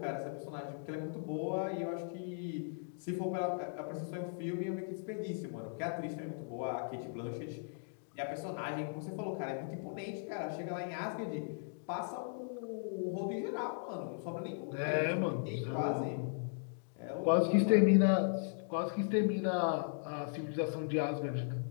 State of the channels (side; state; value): right; silent; digital silence